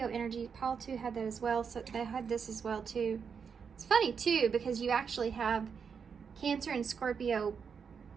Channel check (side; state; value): left; quieter; 6.4 dB